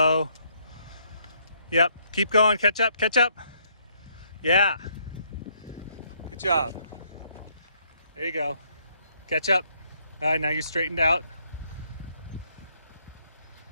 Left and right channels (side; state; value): both; inverted; correlation -0.69